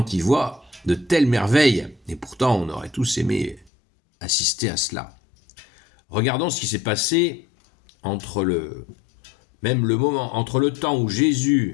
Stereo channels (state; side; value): drops out; right; at 3.7 s